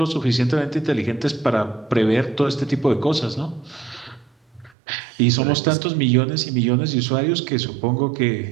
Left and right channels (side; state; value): left; drops out; at 4.7 s